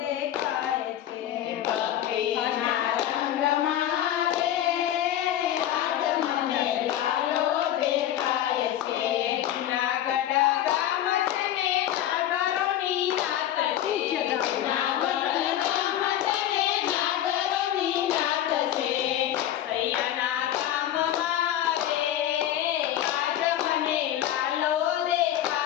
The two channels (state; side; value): quieter; right; 11.8 dB